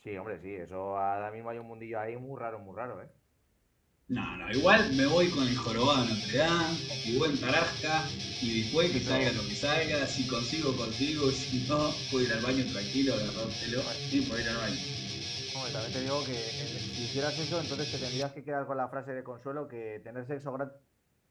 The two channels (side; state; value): both; identical; correlation 1.00